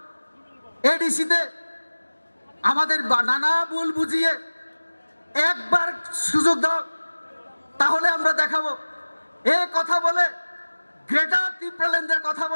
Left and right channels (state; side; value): inverted; both; correlation -1.00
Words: এডিসিতে আমাদের নানা ভুল বুঝিয়ে একবার সুযোগ দাও, তাহলে আমরা দেখাবো। এই কথা বলে, গ্রেটার ত্রিপুরাল্যান্ডের কথা